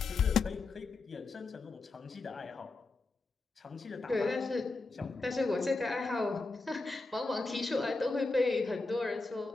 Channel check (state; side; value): quieter; right; 3.6 dB